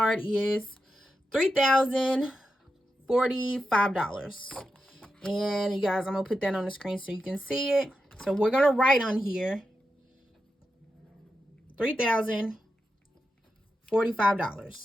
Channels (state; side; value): normal; both; correlation 0.89